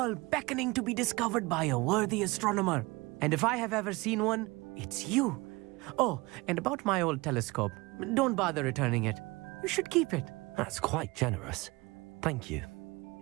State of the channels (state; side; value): quieter; left; 23.3 dB